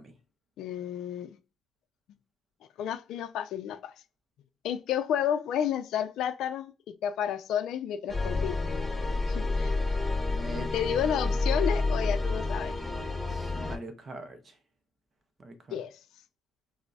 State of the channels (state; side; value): quieter; right; 5.2 dB